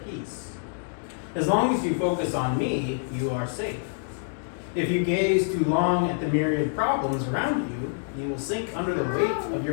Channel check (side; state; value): right; silent; digital silence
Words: As long as you focus on me, you are safe. If you gaze too long at the myriad problems around you, you will sink under the weight of